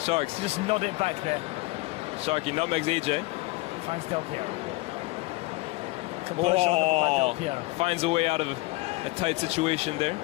Just nod it back there. Sharky nutmegs AJ. Finds Del Piero. Oh, finds a way out of a tight situation there.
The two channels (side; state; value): right; quieter; 22.0 dB